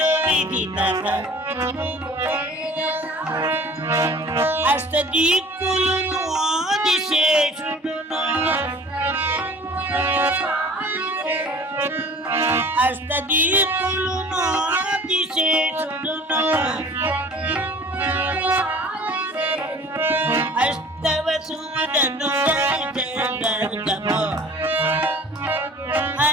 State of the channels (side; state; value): both; normal; correlation 0.46